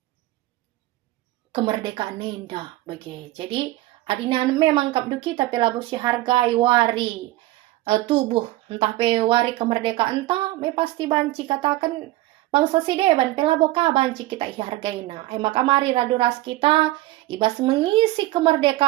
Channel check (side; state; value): left; quieter; 17.5 dB